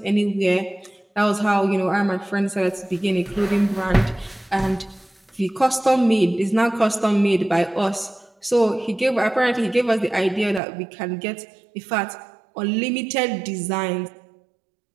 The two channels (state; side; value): drops out; left; at 10.6 s